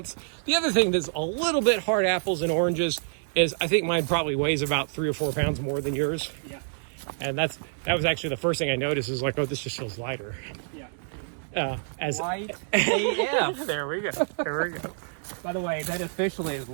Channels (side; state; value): left; silent; digital silence